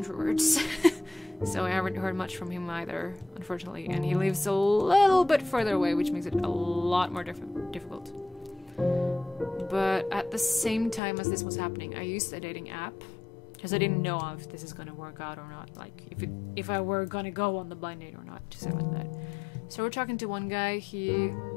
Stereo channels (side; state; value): right; drops out; at 11.0 s